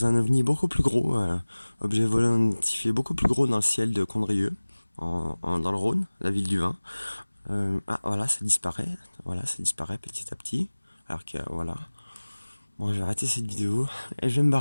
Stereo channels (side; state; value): both; inverted; correlation -1.00